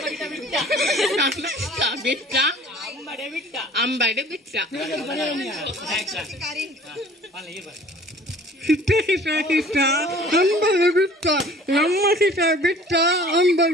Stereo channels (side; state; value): both; normal; correlation 0.49